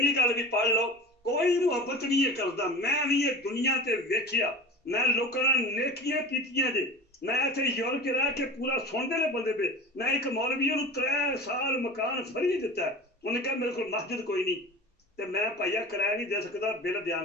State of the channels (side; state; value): both; normal; correlation 0.34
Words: ਗੱਲ ਵੀ ਪੜ੍ਹ ਲਓ ਕੋਈ ਮੁਹੱਬਤ ਨਹੀਂ ਇਹ ਕਰਦਾ ਮੈਂ ਵੀ ਇਹ ਦੁਨੀਆ ਤੇ ਵੇਖਿਆ ਮੈਂ ਲੋਕਾਂ ਨਾਲ ਨੇਕੀਆਂ ਕੀਤੀਆਂ ਜੇ ਮੈਂ ਇੱਥੇ ਯੂਰਪ 'ਚ ਰਹਿ ਕੇ ਪੂਰਾ ਸੁਣਦੇ ਨੇ ਬੰਦੇ ਪਏ ਮੈਂ ਇੱਕ ਮੌਲਵੀ ਨੂੰ 3 ਸਾਲ ਮਕਾਨ ਫਰੀ ਦਿੱਤਾ ਉਹਨੇ ਕਿਹਾ ਮੇਰੇ ਕੋਲ ਮਸਜਿਦ ਕੋਈ ਨਹੀਂ ਤੇ ਮੈਂ ਭਾਈਆ ਕਿਰਾਇਆ ਨਹੀਂ ਦੇ ਸਕਦਾ ਬਿੱਲ